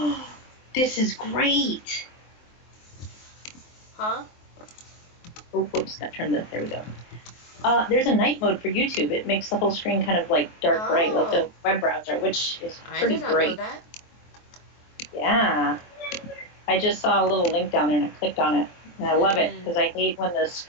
This is great. Huh? Oh, whoops, got turned the... There we go. There's a night mode for YouTube. It makes the whole screen kind of like dark bright, like the web browser, which is pretty I did not great. know that. Yeah. I just saw a little link down there and I clicked on it. And I love it because I hate when the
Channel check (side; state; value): right; late; 23 ms